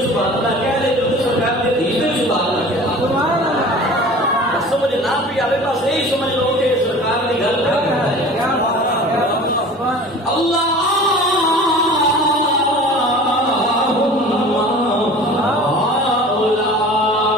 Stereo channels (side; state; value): both; normal; correlation 0.41